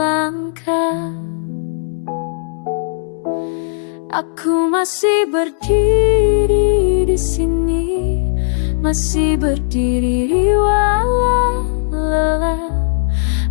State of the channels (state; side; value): silent; right; 67 dB below the other